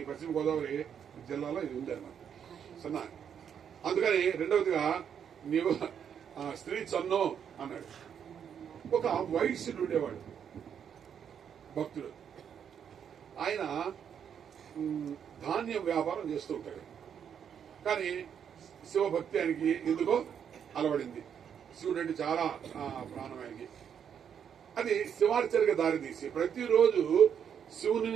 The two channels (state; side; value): quieter; left; 8.1 dB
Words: పశ్చిమ గోదావరి జిల్లాలో ఇది ఉంది అన్నమాట. సన్నా. అందుకని రెండవదిగా నీవు స్త్రీ చన్నో అన్నాడు. ఒక వైశ్యుడు ఉండేవాడు, భక్తుడు. ఆయన ధాన్యం వ్యాపారం చేస్తూ ఉంటాడు. కానీ శివభక్తి ఆయనకి ఎందుకో అలవడింది. శివుడు అంటే చాలా ప్రాణం ఆయనకి. అది శివార్చనకి దారితీసి ప్రతిరోజు